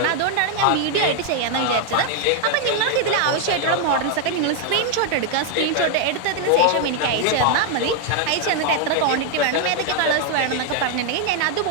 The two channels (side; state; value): both; different; correlation 0.00